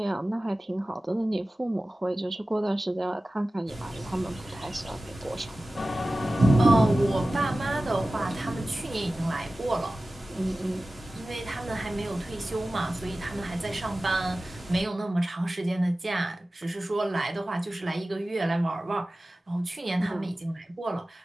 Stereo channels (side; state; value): both; normal; correlation 0.96